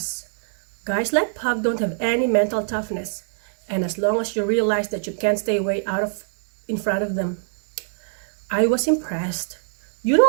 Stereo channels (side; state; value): left; silent; digital silence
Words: Guys like Pug don't have any mental toughness. And as long as you realize that you can't stay way in front of them. I was impressed. You